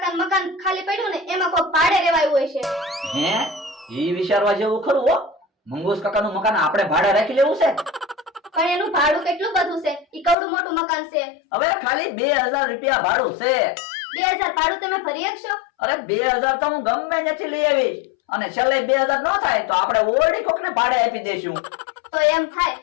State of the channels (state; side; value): drops out; right; at 10.4 s